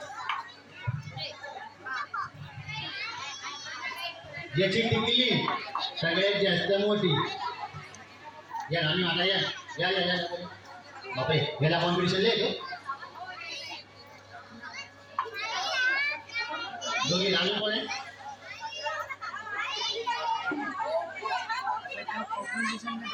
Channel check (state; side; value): identical; both; correlation 1.00